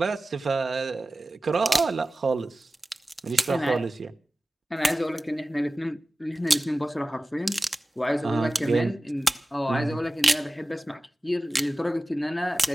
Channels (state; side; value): normal; both; correlation 0.96